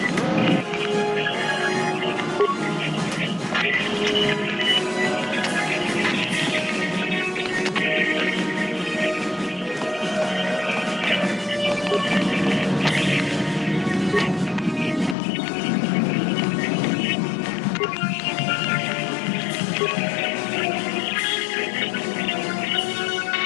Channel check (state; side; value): drops out; right; at 15.2 s